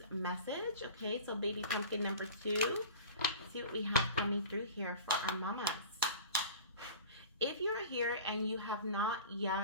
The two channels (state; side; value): inverted; both; correlation -0.40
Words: message. Okay, so baby pumpkin number 2. Let's see what we have coming through here for our mamas. If you're here and you have not